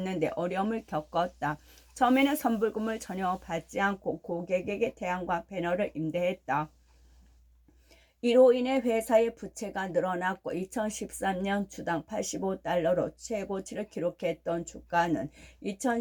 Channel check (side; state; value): both; identical; correlation 1.00